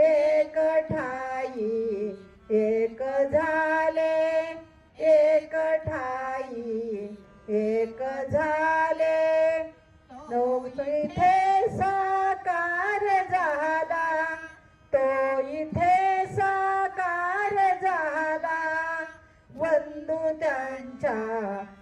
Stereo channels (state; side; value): identical; both; correlation 1.00